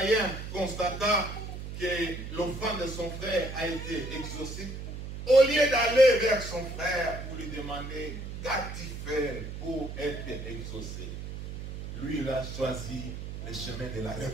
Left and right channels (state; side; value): noise; right; hum, 8 dB below the sound